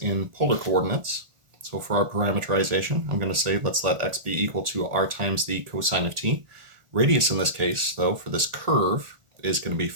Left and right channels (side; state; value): left; late; 1.4 ms